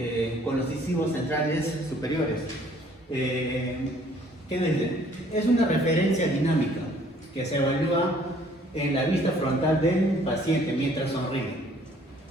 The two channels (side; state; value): both; normal; correlation 0.59